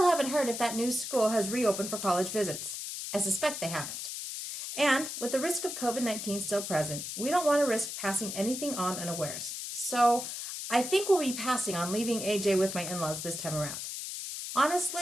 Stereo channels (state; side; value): noise; left; hiss, 6 dB below the sound